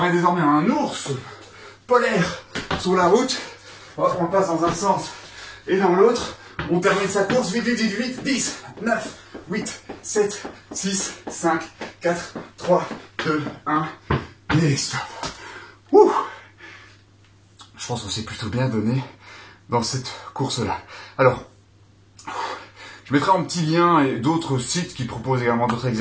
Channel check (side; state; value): both; identical; correlation 1.00